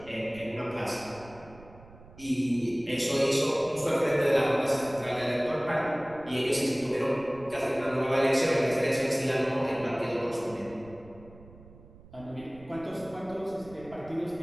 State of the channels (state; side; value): noise; right; rumble, 21 dB below the sound